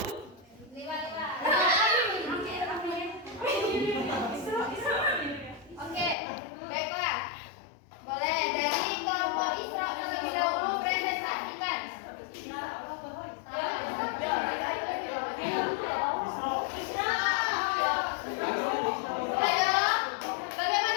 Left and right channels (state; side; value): drops out; right; at 6.2 s